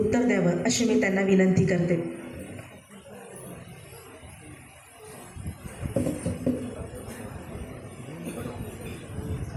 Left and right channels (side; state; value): both; identical; correlation 1.00